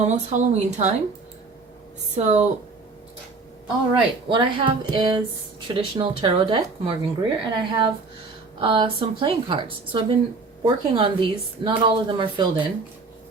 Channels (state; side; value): quieter; left; 4.0 dB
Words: Halloween time. So, all right, what I have is traditional tarot deck, Morgan Greer, and I have some playing cards. So I've been working on these. Not all of them are filled in,